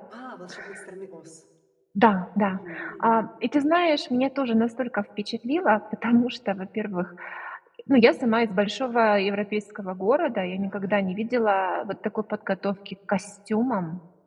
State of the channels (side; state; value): both; identical; correlation 1.00